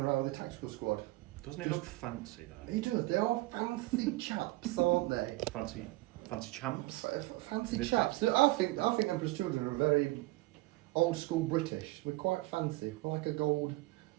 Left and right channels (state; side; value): quieter; left; 20.2 dB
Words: with a tactical squad. Doesn't he look fancy, though? He does. They are fancy chaps, aren't they? Fancy champs? Fancy This chaps. I think Emperor's Children are very old school British. We're quite fancy. We're like a gold